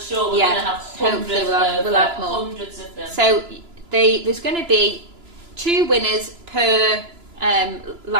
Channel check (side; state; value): left; late; 2.9 ms